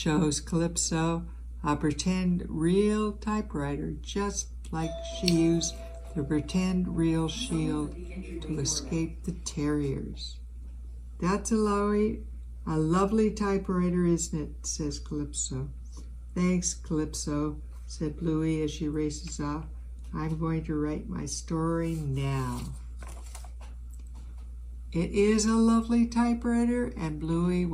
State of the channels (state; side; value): identical; both; correlation 1.00